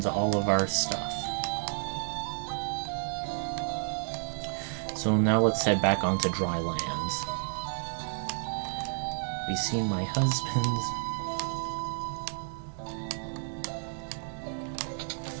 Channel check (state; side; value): silent; left; digital silence